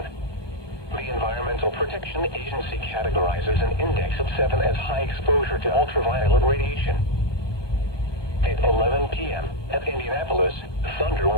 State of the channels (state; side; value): late; right; 1.2 ms